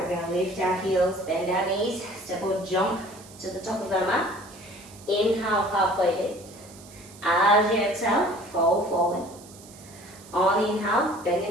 we're going to lift our heels, bend our knees, step or jump to the top of our mat. Inhale, halfway lift. As you exhale, fold forward. On the inhale, bend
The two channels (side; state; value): right; noise; hiss, 21 dB below the sound